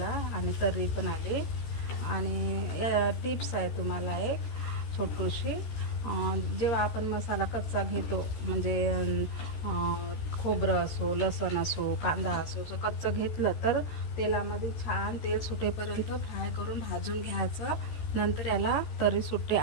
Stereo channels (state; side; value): late; right; 14 ms